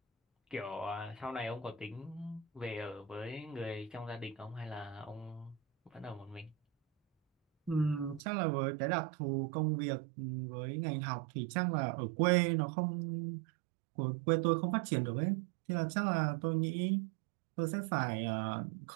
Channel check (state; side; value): drops out; left; at 8.2 s